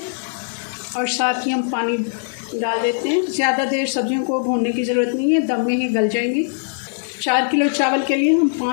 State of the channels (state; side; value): silent; right; digital silence